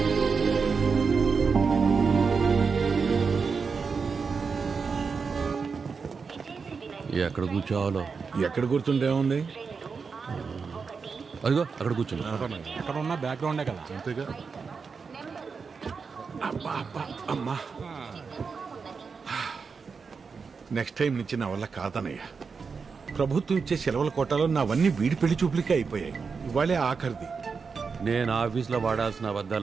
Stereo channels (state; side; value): quieter; left; 5.3 dB